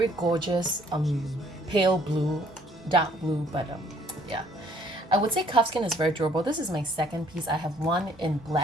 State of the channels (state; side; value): normal; both; correlation 0.61